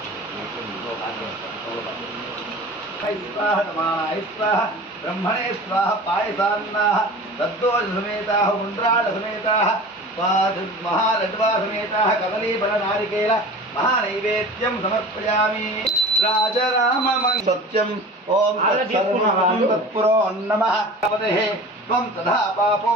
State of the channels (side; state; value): both; normal; correlation 0.38